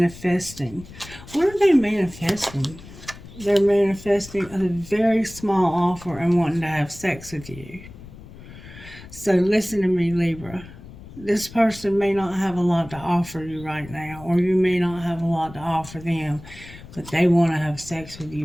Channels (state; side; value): noise; left; rumble, 17 dB below the sound